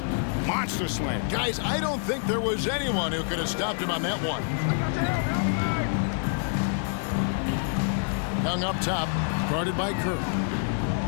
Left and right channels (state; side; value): silent; right; 60 dB below the other